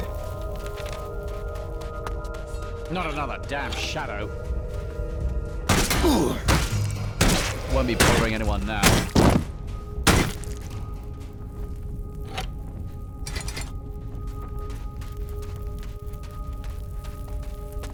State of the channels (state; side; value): identical; both; correlation 1.00